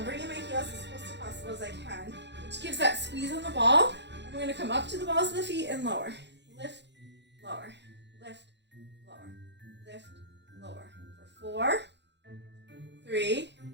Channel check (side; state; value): left; late; 0.51 ms